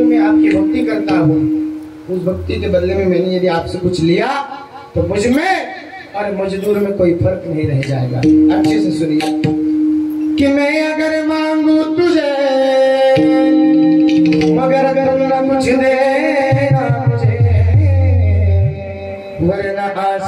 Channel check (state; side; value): identical; both; correlation 1.00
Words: मैं आपकी भक्ति करता हूँ, उस भक्ति के बदले में मैंने यदि आपसे कुछ लिया तो मुझ में और मजदूर में कोई फर्क नहीं रह जाएगा. अच्छे से सुनिए कि मैं अगर मांगू तुझे, मगर अगर ना कुछ देना मुझे, वरना